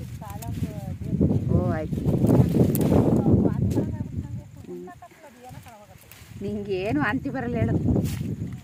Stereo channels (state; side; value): identical; both; correlation 1.00